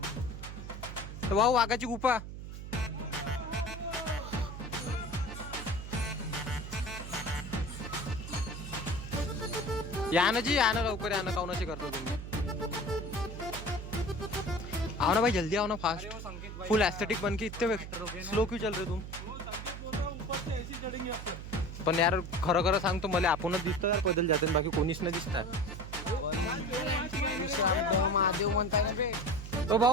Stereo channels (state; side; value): noise; right; hum, 9 dB below the sound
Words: भाऊ वाघाची गुफा या ना जी, या ना लवकर, या ना काउनाशी करतो तुम्ही। आओ ना भाई जल्दी आओ ना, फास्ट फुल एस्थेटिक बन के इतने स्लो क्यों चल रहे तुम? पण यार खरं खरं सांगतो मला आपणच दिसतो यार पैदल जाते, बाकी कोणीच नाही दिसणार। महादेव म्हणताय ना बे. ओ